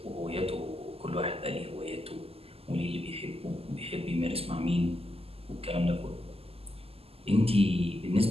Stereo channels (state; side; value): late; left; 0.29 ms